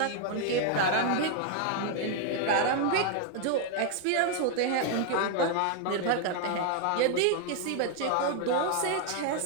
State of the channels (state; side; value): different; both; correlation 0.00